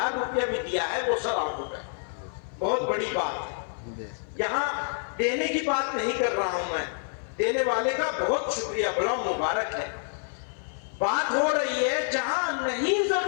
روپیہ بھی دیا ہے وہ ثواب ہوگا. بہت بڑی بات ہے. یہاں دینے کی بات نہیں کر رہا ہوں میں، دینے والے کا بہت شکریہ، بڑا مبارک ہے. بات ہو رہی ہے جہاں نہیں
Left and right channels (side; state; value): right; silent; 56 dB below the other